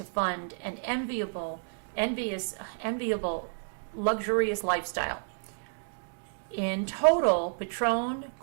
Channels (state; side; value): silent; left; digital silence